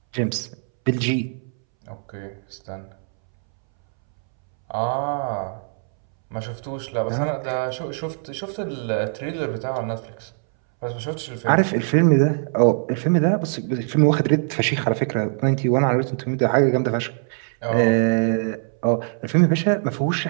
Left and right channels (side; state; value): left; silent; 64 dB below the other